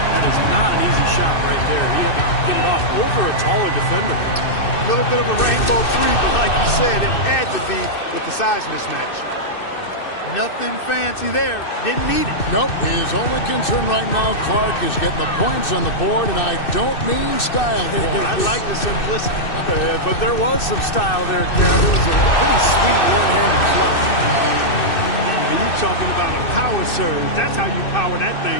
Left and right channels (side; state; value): right; late; 2.6 ms